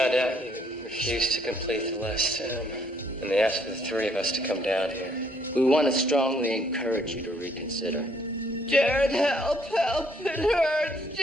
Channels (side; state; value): both; normal; correlation 0.66